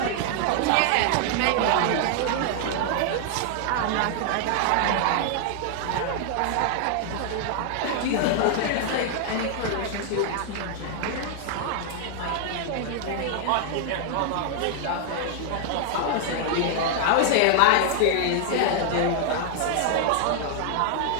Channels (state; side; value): different; both; correlation 0.00